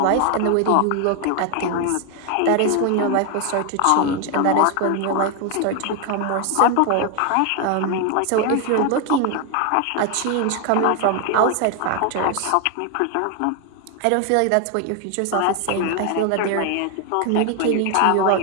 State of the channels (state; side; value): different; both; correlation 0.01